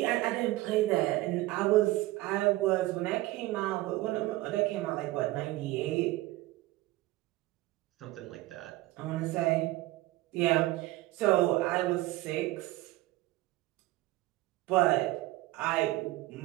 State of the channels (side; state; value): left; quieter; 18.4 dB